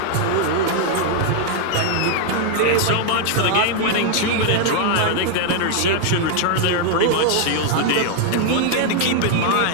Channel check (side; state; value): both; different; correlation 0.00